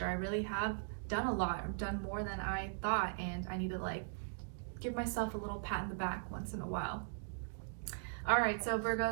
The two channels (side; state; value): left; silent; digital silence